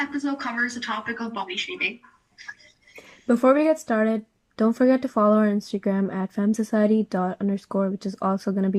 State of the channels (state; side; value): identical; both; correlation 1.00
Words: covers the topic of body shaming. Before we get started, don't forget to follow our Instagram at femsociety._, which is also going to